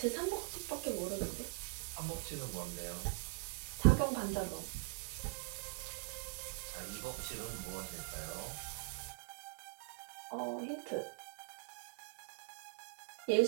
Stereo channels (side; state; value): left; quieter; 34.9 dB